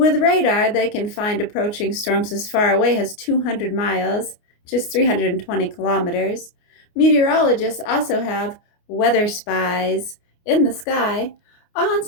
radar, they can find approaching storms as far away as 200 miles, just 320 kilometers. Meteorologists also have weather spies in the sky.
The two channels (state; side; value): late; right; 29 ms